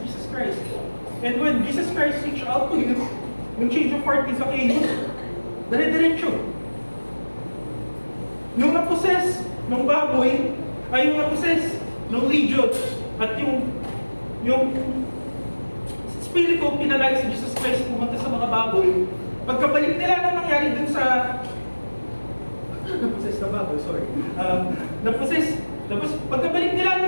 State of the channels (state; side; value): inverted; both; correlation -1.00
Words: Jesus Christ. And when Jesus Christ reached out to him, yung change of heart ni Zacchaeus, dire-diretso. Yung na-possess ng baboy, ay yung na-possess ng legions, at yung spirito pinalay si Jesus Christ pumunta sa mga baboy. Pagkabalik nila na nangyari dun sa na-possess na baboy, sorry. Na-possess, tapos pagkabalik nila